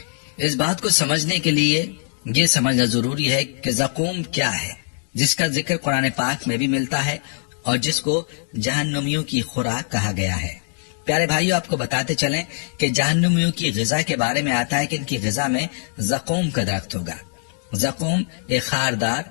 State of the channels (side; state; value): right; silent; 64 dB below the other